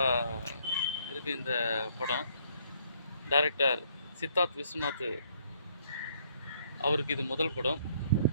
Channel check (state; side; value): inverted; both; correlation -0.66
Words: இருக்குது இந்த படம். டைரக்டர் சித்தார்த் விஸ்வநாத் அவருக்கு இது முதல் படம்.